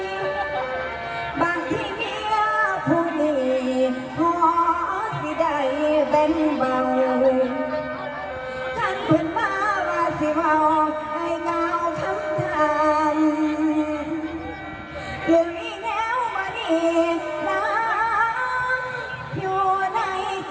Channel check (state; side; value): identical; both; correlation 1.00